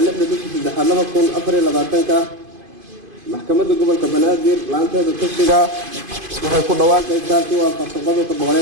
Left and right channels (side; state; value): left; late; 2.5 ms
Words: 6/3/2024 maxkamadda gobolka Banaadir laanteeda tashiga waxay ku dhawaaqaysaa si waafaqsan qodobka